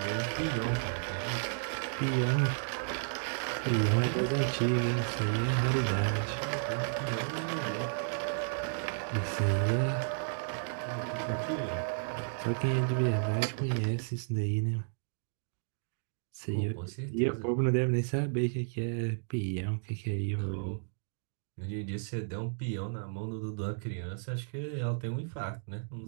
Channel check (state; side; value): silent; left; digital silence